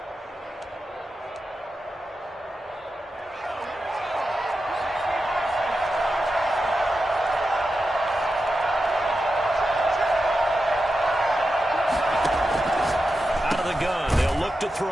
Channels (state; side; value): normal; both; correlation 0.90